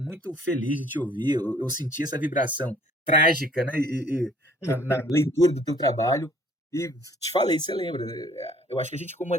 feliz de te ouvir, eu senti essa vibração trágica, né, na leitura do teu trabalho, e te falei, você lembra, eu acho que a gente como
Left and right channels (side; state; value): both; normal; correlation 0.57